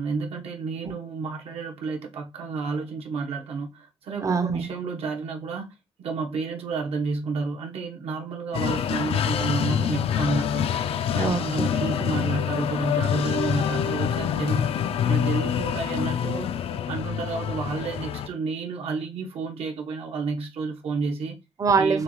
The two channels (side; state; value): both; normal; correlation 0.56